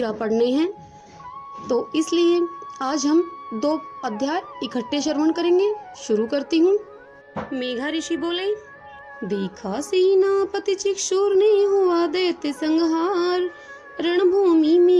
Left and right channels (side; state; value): both; identical; correlation 1.00